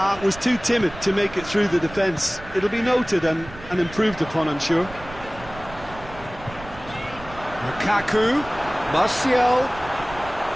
Was too timid to make it through the defence. It'll be noted and improved upon, I'm sure. Lukaku. Martial.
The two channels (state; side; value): noise; right; rumble, 16 dB below the sound